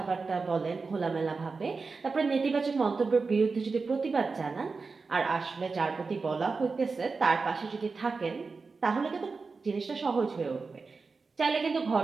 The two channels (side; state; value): left; quieter; 4.4 dB